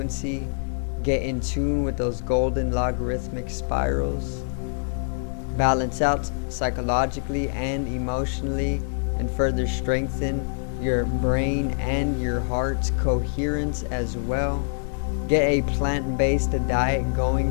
Get in tune with those golden logarithmic spirals. Balance out psychologically and emotionally, and further strengthen your brain and your heart's coherence as well. Get a plant-based diet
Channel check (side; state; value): right; silent; 62 dB below the other